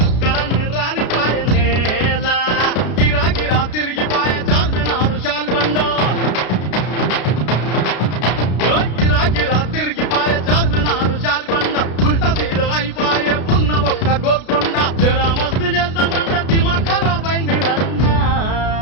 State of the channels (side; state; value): right; late; 33 ms